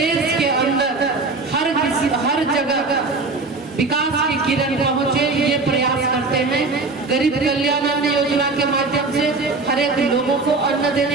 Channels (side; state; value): left; quieter; 3.7 dB